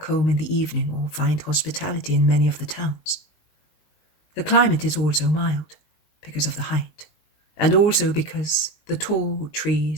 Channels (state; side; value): late; right; 20 ms